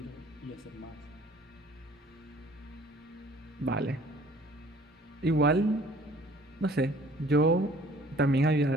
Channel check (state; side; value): normal; both; correlation 0.54